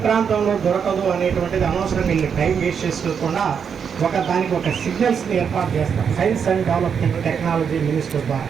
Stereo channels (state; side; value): quieter; left; 7.0 dB